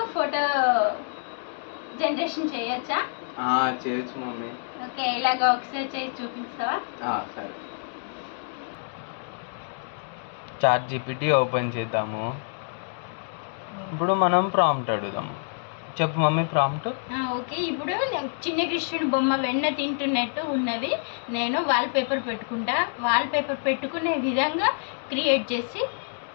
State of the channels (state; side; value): silent; right; digital silence